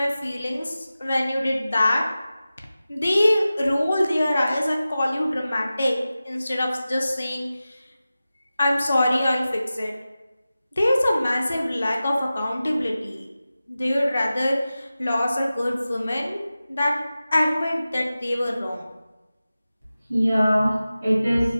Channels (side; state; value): both; inverted; correlation -0.95